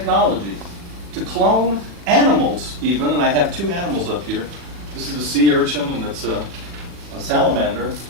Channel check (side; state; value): left; late; 40 ms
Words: To clone animals even, and I have two animals up here. This is a sea urchin and it's a salamander.